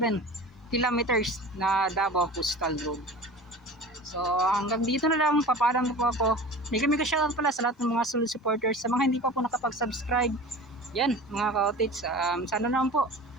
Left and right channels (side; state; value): both; normal; correlation 0.37